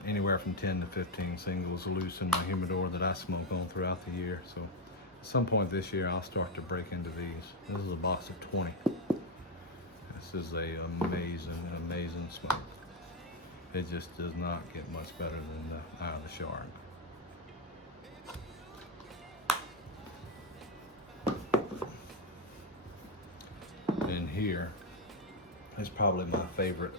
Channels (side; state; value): both; normal; correlation 0.07